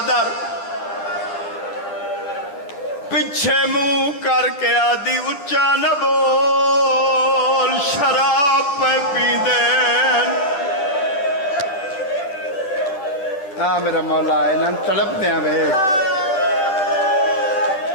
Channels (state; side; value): late; right; 10 ms